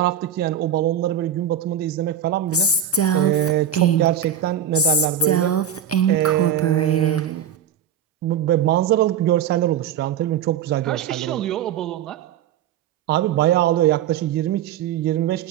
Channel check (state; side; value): quieter; left; 8.9 dB